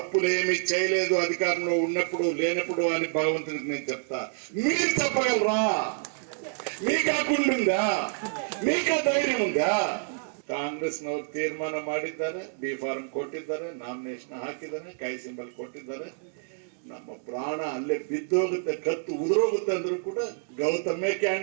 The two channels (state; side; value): silent; left; digital silence